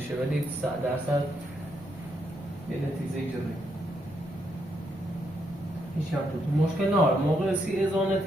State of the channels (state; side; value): normal; both; correlation 0.77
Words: ولی 100% یه نتیجه جوری هیچ هم تو مشکل نار موقع سی